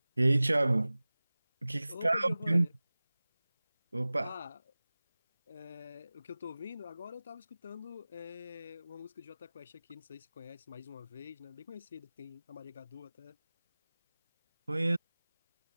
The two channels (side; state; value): both; inverted; correlation -0.98